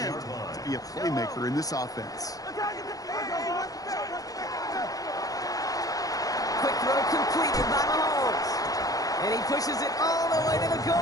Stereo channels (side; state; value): right; late; 0.17 ms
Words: to be a playmaker in this offense. Quick throw completed by Mahomes. And he pushes it all the way to the